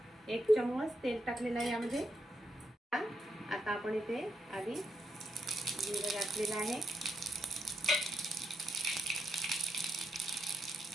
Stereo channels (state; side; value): normal; both; correlation 0.82